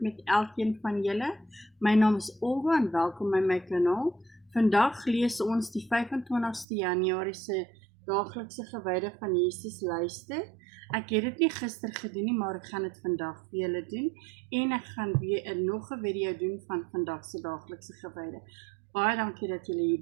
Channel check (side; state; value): left; drops out; at 6.7 s